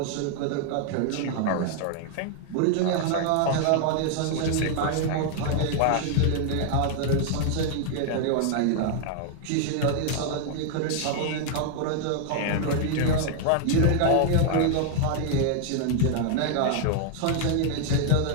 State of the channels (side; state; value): both; different; correlation 0.00